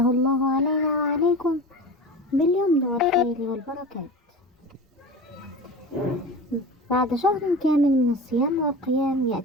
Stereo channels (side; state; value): both; normal; correlation 0.32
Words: الله علينا وعليكم باليمن والخير والبركات. بعد شهر كامل من الصيام والقيام